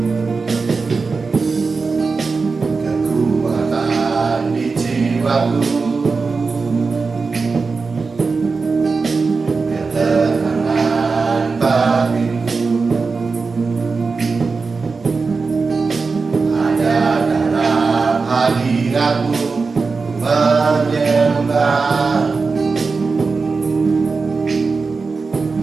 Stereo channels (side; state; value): left; quieter; 4.4 dB